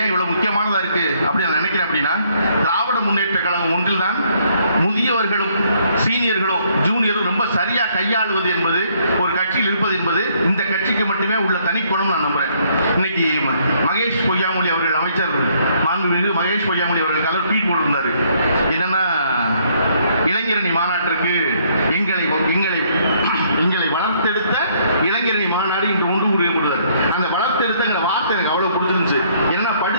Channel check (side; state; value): both; inverted; correlation -0.67